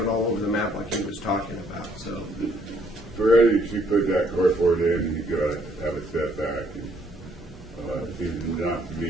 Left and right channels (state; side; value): normal; both; correlation 0.67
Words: all over the map like he was talking about. So For Eddie, she put that carport in, you gotta have a setback, and, it seems not to